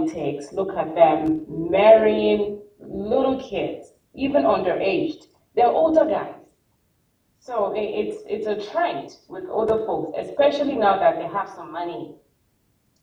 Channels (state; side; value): identical; both; correlation 1.00